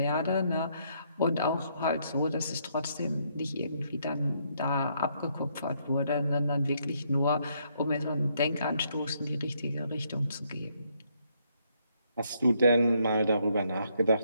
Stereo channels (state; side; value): inverted; both; correlation -0.72